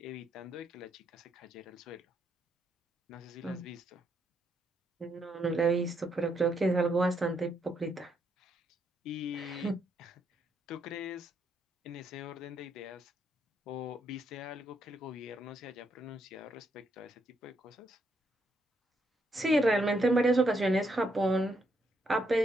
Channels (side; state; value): both; normal; correlation 0.76